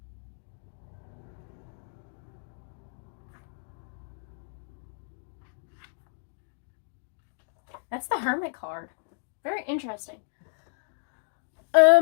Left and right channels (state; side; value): silent; right; digital silence